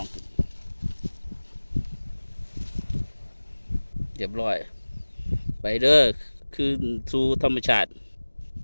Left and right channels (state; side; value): inverted; both; correlation -1.00